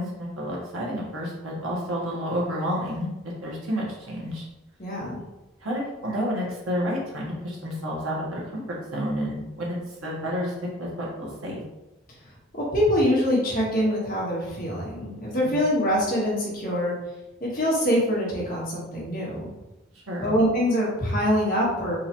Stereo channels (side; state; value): both; normal; correlation 0.45